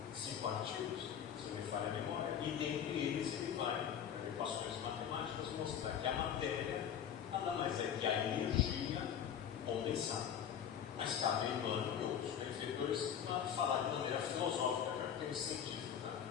5 artigos, se não me falha a memória, e dentre eles ele vai, por equações matemáticas, mostrar que a matéria nada mais é que a energia condensada. Mas cabe a Emmanuel e outros benfeitores falar de maneira filosófica, já que tem científica,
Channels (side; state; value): right; quieter; 8.8 dB